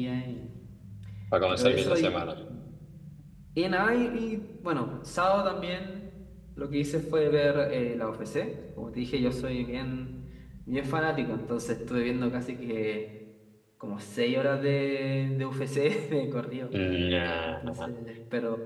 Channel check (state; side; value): identical; both; correlation 1.00